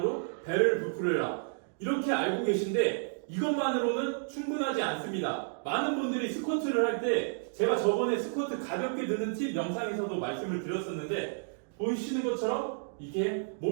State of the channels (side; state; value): left; silent; digital silence